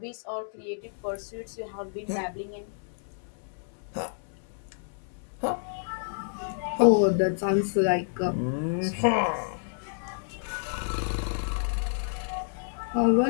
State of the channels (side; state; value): right; silent; 58 dB below the other